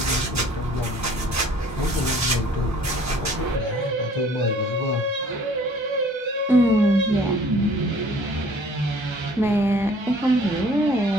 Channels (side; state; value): both; normal; correlation 0.54